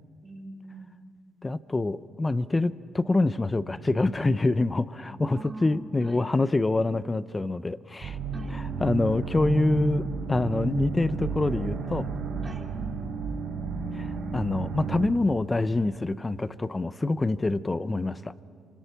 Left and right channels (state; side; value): normal; both; correlation 0.93